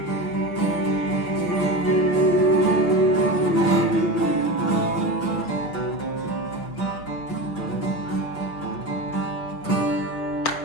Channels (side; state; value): right; late; 6.5 ms